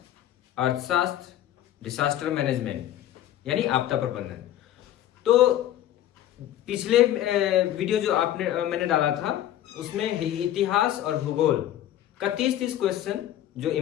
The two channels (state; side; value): quieter; right; 12.3 dB